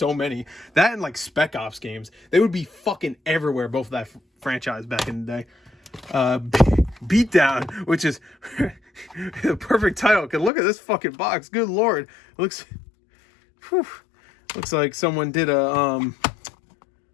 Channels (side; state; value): right; drops out; at 10.5 s